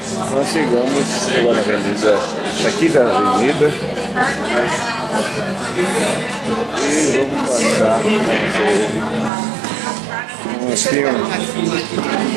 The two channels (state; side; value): drops out; left; at 9.3 s